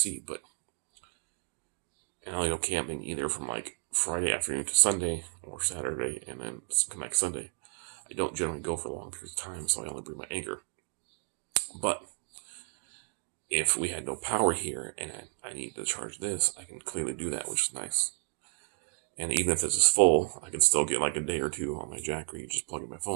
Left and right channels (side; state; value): left; silent; digital silence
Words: But and I only go camping either from like Friday afternoon to Sunday or Saturday and then come back Sunday. I don't generally go for long periods of time, so I only bring my Anchor. But if we had no power here and I need to charge this, I can clearly do that, which is nice. And even if this is full, I can still get like a day or 2 on my jackery, just plug in my